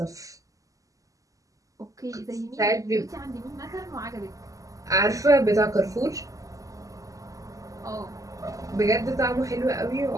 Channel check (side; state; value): left; late; 0.16 ms